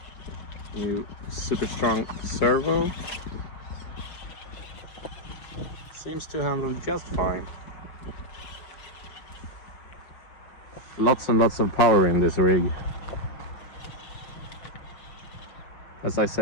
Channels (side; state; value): right; late; 5.6 ms